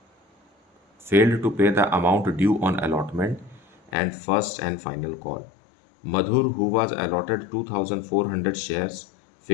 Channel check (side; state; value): right; drops out; at 3.9 s